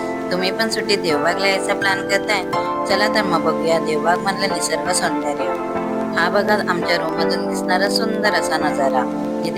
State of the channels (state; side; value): noise; left; rumble, 25 dB below the sound